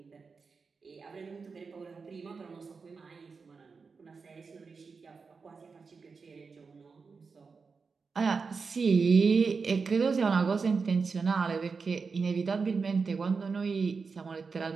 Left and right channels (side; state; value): left; quieter; 4.9 dB